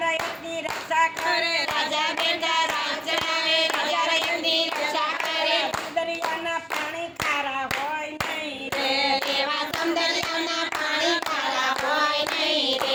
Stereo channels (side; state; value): both; identical; correlation 1.00